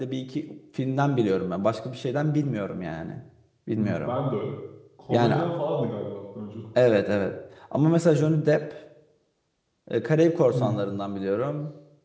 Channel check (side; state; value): both; identical; correlation 1.00